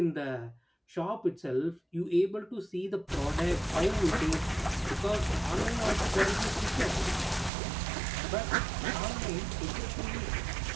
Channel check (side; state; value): left; drops out; at 7.5 s